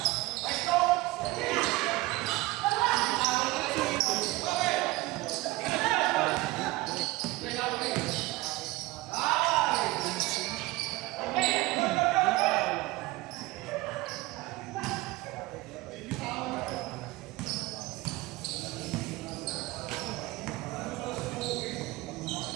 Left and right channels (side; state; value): left; quieter; 20.1 dB